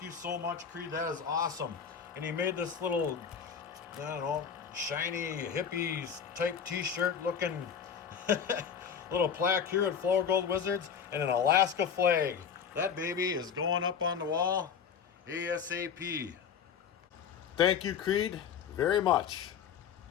you so much, Creed. That is awesome. And he made this little, I don't know, shiny hippies type t-shirt looking little plaque here at Flourgoldwizards and an Alaska flag. That baby is going up on the wall ASAP. Thank you, Creed, very much.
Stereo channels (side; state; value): right; quieter; 7.3 dB